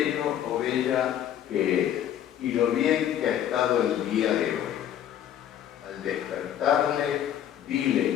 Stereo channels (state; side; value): quieter; right; 10.5 dB